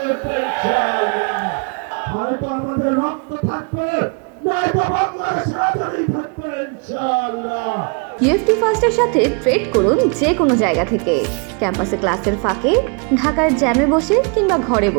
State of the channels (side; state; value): left; quieter; 35.9 dB